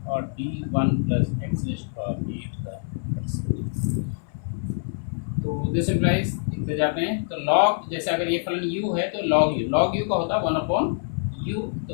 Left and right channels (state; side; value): silent; right; 62 dB below the other